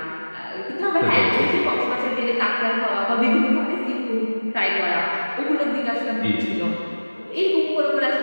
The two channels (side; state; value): both; inverted; correlation -1.00